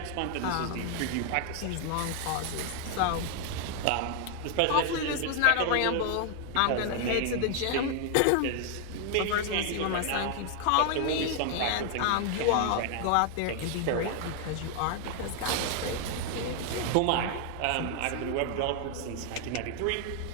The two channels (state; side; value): different; both; correlation 0.00